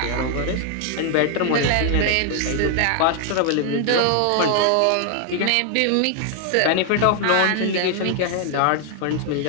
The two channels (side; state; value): both; different; correlation 0.00